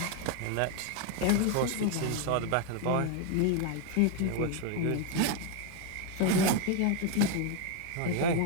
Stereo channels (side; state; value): both; different; correlation 0.01